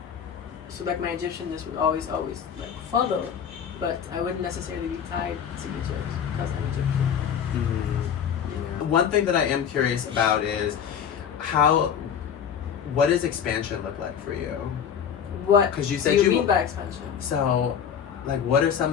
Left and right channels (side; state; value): right; quieter; 8.1 dB